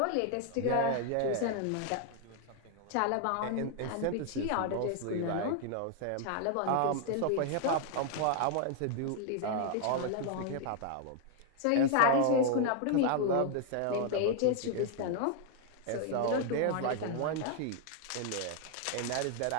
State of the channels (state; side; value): different; both; correlation 0.00